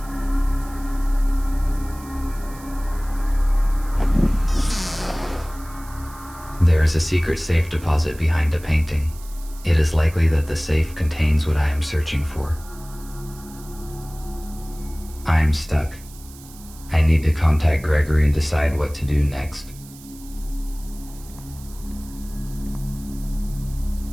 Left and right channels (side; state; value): right; noise; hiss, 20 dB below the sound